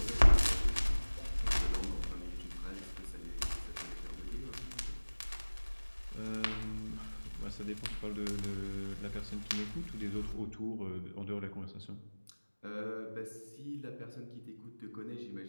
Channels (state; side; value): inverted; both; correlation -1.00